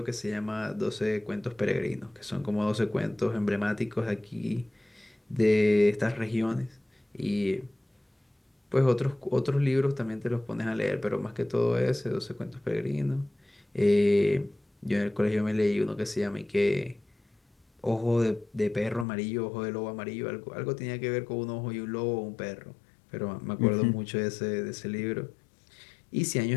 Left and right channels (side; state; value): right; drops out; at 19.1 s